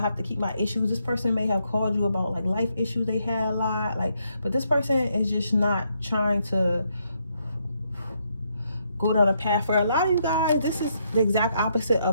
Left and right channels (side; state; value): both; inverted; correlation -0.76